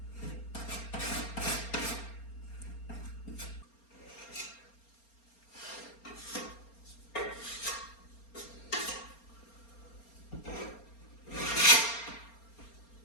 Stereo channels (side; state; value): right; late; 4.3 ms